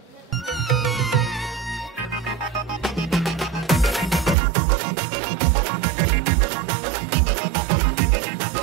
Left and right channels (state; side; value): drops out; left; at 4.4 s